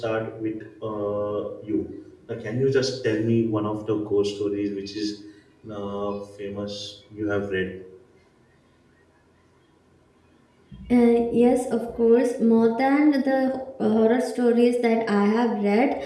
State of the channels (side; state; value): both; identical; correlation 1.00